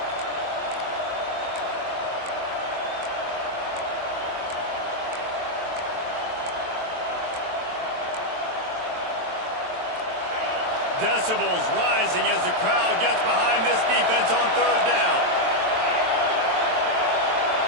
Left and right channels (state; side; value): late; left; 23 ms